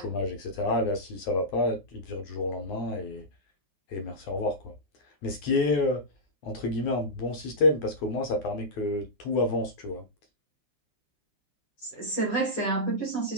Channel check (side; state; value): right; late; 10 ms